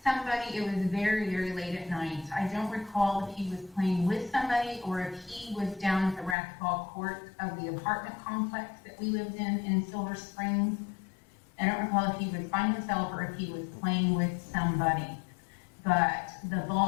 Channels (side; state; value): right; drops out; at 6.4 s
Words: somebody. It was very, very late at night. I don't recall if he was playing with somebody or if he was down at the racquetball court of the apartment complex that we lived in Silver Springs. I don't recall if he was by himself or if he was playing with somebody. But the